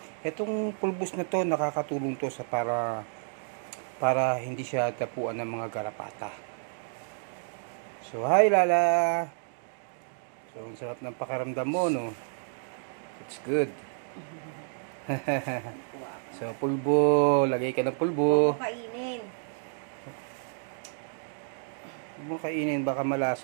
Itong pulbus na to, nakakatulong to sa para hindi siya tapuan ng mga garapata. So hi Lala! So ang sarap ng pakaramdam mo, no? It's good. So pulbo, lagay ka ng pulbo. Kainin. Huwag mo kainin, baka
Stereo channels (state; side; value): silent; left; digital silence